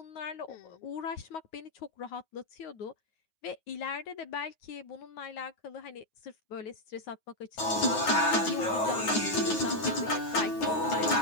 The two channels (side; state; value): right; late; 9.4 ms